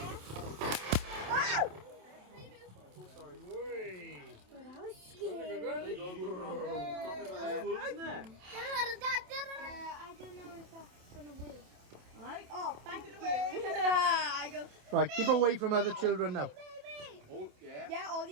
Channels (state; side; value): late; left; 27 ms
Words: Right, keep away from other children now. Oh, yeah. Yeah,